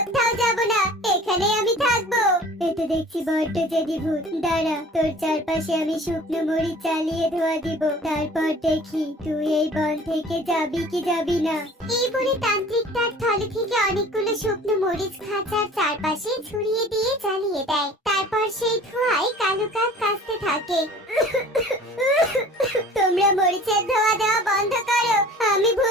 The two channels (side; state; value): both; normal; correlation 0.46